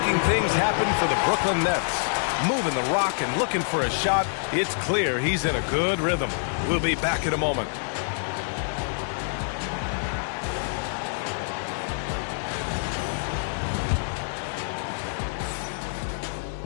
things happen for the Brooklyn Nets. Moving the rock and looking for a shot. It's clear he's in a good rhythm. We'll be back in a moment.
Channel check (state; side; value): silent; right; digital silence